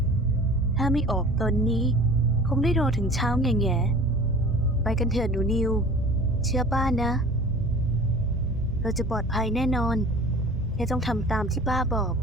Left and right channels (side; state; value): both; normal; correlation 0.43